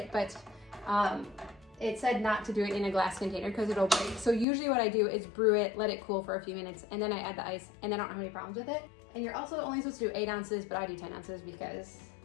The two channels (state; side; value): drops out; right; at 4.5 s